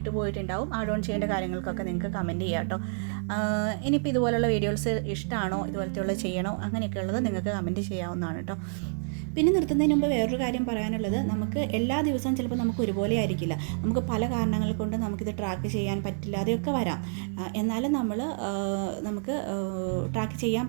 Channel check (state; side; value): silent; left; 59 dB below the other